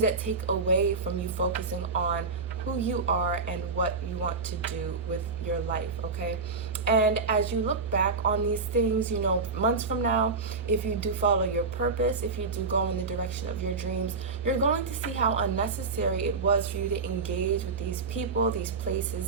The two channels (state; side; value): quieter; left; 4.2 dB